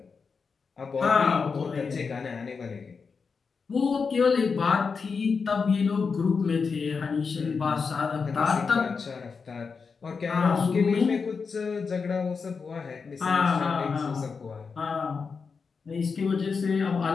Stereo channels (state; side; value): quieter; right; 5.2 dB